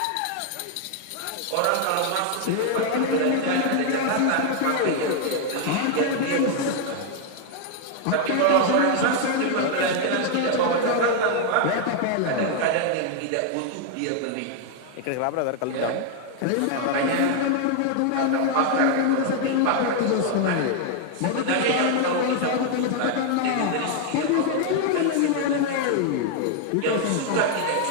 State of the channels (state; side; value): different; both; correlation 0.00